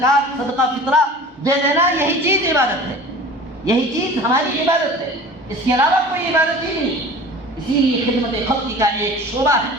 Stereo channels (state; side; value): normal; both; correlation 0.41